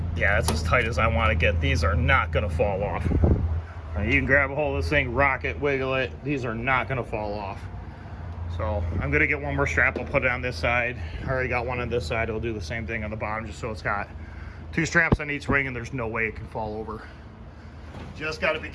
Yeah, that's as tight as I want to get. These are not going to fall off. You can grab a hold of this thing, rock it, wiggle it. These are not going to fall off. So I'm going to get one more strap. I'll put it on this side. I already got one on this side. I'll do the same thing on the bottom, just so it's got 2 straps on each ring and there's no way it can fall over. Just got to be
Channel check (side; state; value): both; identical; correlation 1.00